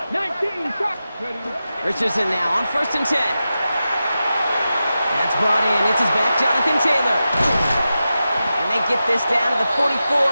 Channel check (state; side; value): inverted; both; correlation -0.92